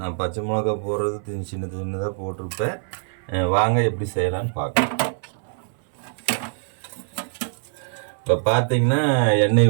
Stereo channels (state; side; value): silent; left; 63 dB below the other